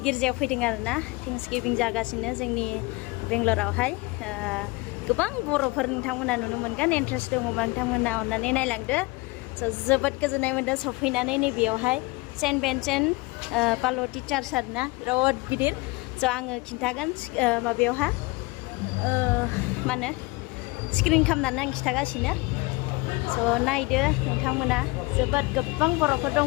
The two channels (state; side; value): quieter; right; 24.5 dB